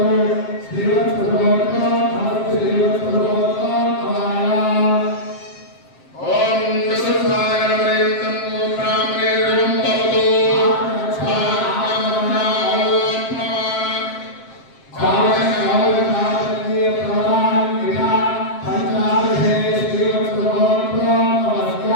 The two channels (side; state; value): right; late; 7.6 ms